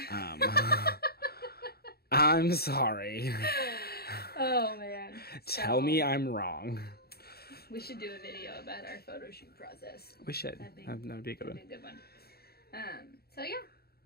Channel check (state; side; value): late; right; 0.46 ms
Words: I'm sorry. Oh man. Tell me I'm wrong. We should do a video about our photo shoot process. We should. That'd be- That would be a good That'd one. be a good one. So yeah,